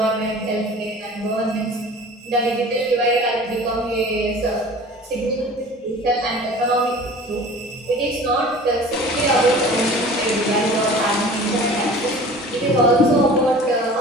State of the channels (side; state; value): both; normal; correlation 0.43